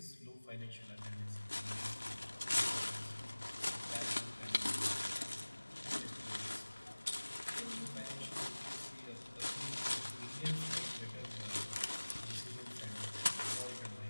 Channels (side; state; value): both; inverted; correlation -1.00